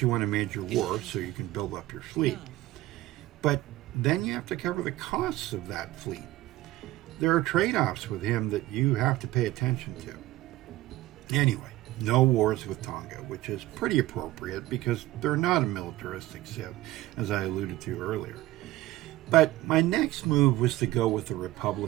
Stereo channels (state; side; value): quieter; left; 16.7 dB